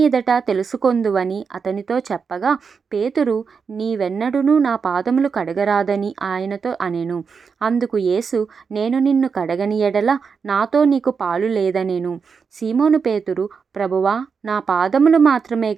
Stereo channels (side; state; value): left; quieter; 5.7 dB